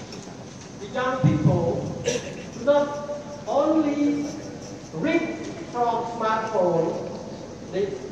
the young people do not only read from smartphones,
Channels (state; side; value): identical; both; correlation 1.00